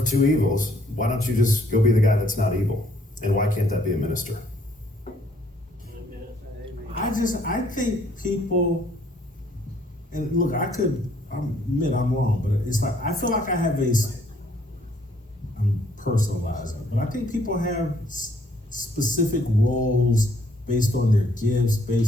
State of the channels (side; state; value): both; normal; correlation 0.65